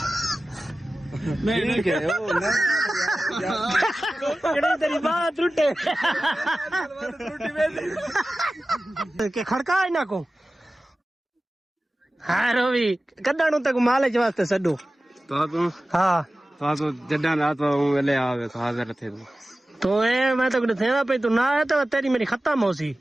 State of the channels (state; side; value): normal; both; correlation 0.96